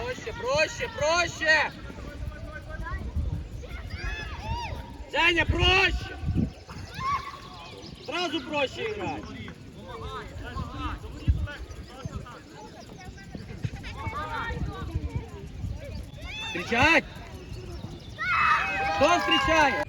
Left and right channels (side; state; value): both; identical; correlation 1.00